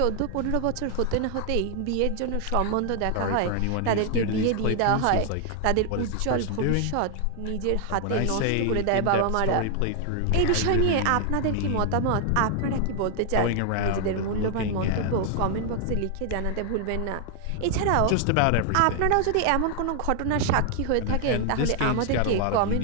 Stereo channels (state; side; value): different; both; correlation 0.00